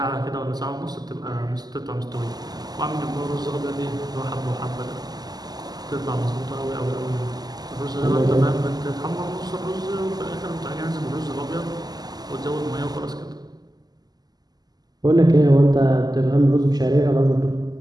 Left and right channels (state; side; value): late; left; 0.20 ms